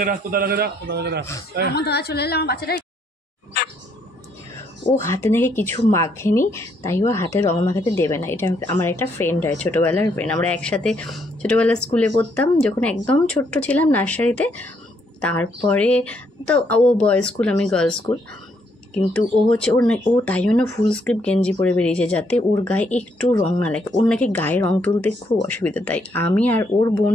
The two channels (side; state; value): both; normal; correlation 0.72